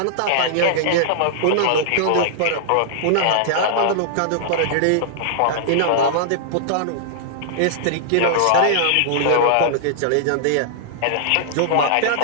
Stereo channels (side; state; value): both; different; correlation -0.02